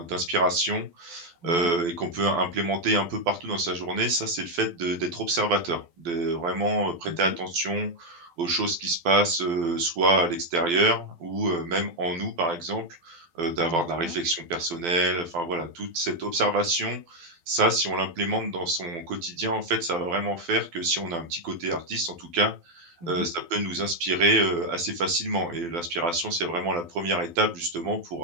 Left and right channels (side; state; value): left; late; 12 ms